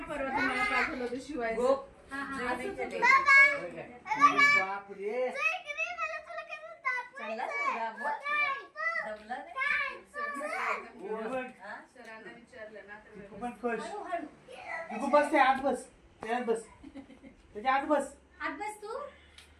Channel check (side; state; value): both; identical; correlation 1.00